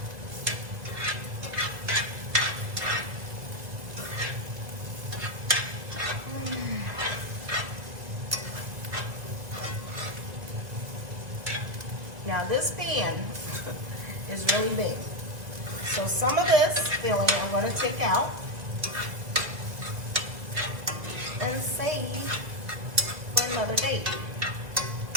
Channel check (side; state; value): left; late; 1.9 ms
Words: Now this pan is really big. So some of this filling I'm going to take out and save for another date.